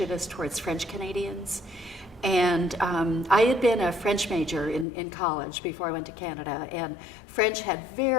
towards French Canadians. And I had been a French major in college before I went to Canada, and French had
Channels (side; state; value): right; drops out; at 4.9 s